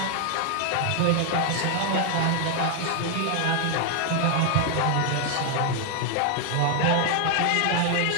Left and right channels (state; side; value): different; both; correlation 0.00